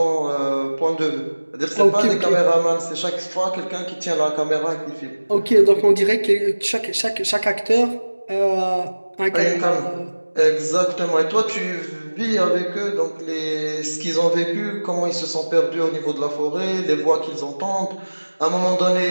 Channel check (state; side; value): inverted; both; correlation -1.00